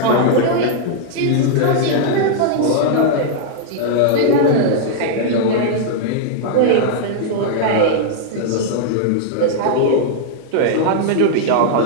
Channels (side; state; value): both; different; correlation -0.01